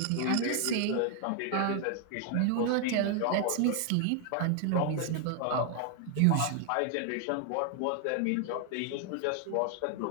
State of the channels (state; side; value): different; both; correlation 0.00